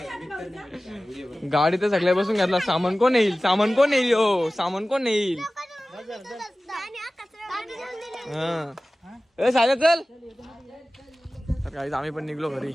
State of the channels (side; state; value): both; normal; correlation 0.97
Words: गाडी तर सगळ्या बसून घेतला. सामान कोण येईल हो सामान कोण येईल? सायला चल. तर गाईज आम्ही पण निघलो घरी.